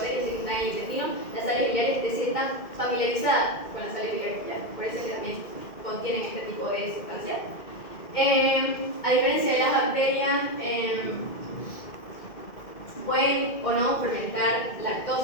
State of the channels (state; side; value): late; right; 2.1 ms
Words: que están en el intestino. Las sales biliares, es decir, están familiarizadas con las sales biliares, por eso es que también contienen este tipo de sustancias. A diferencia de las bacterias, pueden o no fermentar